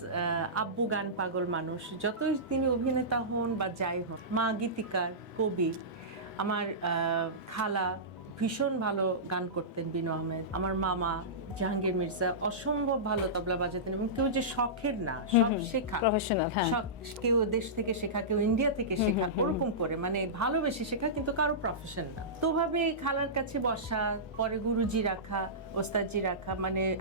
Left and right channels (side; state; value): both; normal; correlation -0.18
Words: আব্বু গান পাগল মানুষ, যতই তিনি অভিনেতা হন বা যাই হন। মা গীতিকার, কবি। আমার খালা ভীষণ ভালো গান করতেন, বিনু আহমেদ। আমার মামা জাহাঙ্গীর মির্জা অসম্ভব ভালো তবলা বাজাতেন, এবং কেউ যে শখের না, সব শেখা, প্রফেশনাল। কেউ দেশ থেকে শেখা, কেউ ইন্ডিয়া থেকে শেখা, ওরকম করে মানে ভালোবেসে শেখা, কিন্তু কারো প্রফেশন না। তো ভাবে খালার কাছে বসা, পরে গুরুজি রাখা, ওস্তাদজি রাখা, মানে